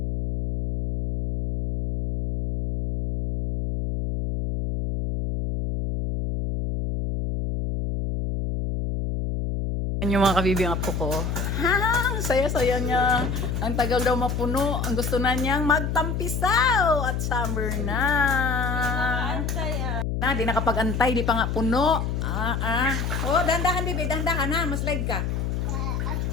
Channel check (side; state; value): left; noise; hum, 1 dB below the sound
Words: Yung mga kabibi ang apo ko. Ha, saya-saya niya. Ang tagal daw mapuno. Ang gusto na niyang magtampisaw. At summer na. Na, di nakapag-antay. Di pa nga puno. Oh, dahan-dahan, bibi. Dahan-dahan ha. Mas leg ka.